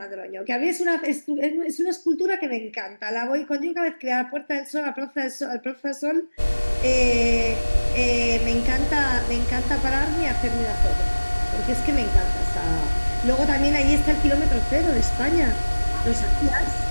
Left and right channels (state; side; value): inverted; both; correlation -1.00